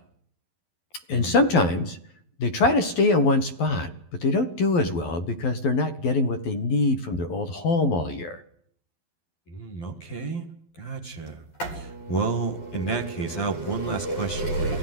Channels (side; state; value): right; late; 12 ms